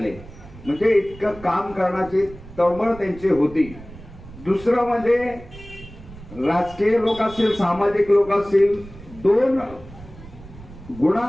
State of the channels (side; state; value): right; noise; rumble, 18 dB below the sound